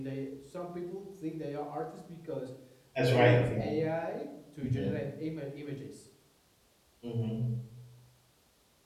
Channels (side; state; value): both; identical; correlation 1.00